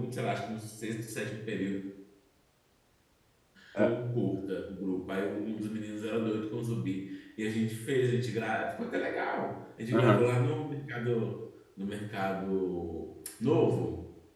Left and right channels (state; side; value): identical; both; correlation 1.00